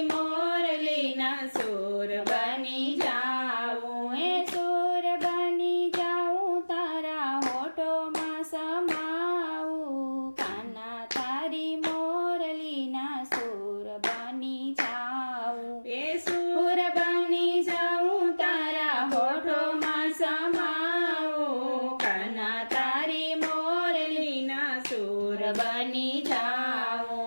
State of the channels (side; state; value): both; inverted; correlation -1.00